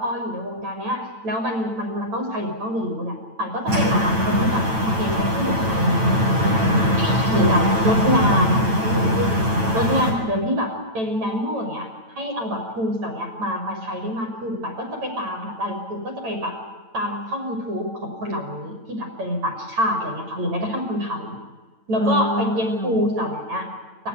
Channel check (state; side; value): late; left; 9.0 ms